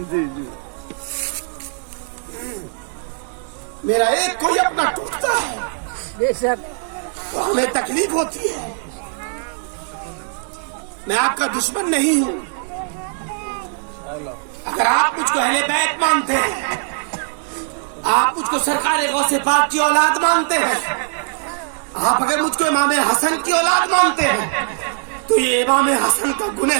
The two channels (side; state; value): left; silent; digital silence